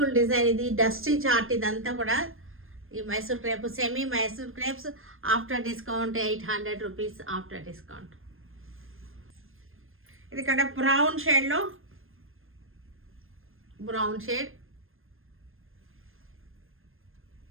డిజైన్. ఇది డస్టీ చార్ట్. ఇదంతా కూడా ఈ Mysore crepe semi Mysore crepes after discount 800 rupees after discount. ఇది ఇక్కడ బ్రౌన్ షేడ్లో brown shade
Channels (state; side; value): late; left; 0.60 ms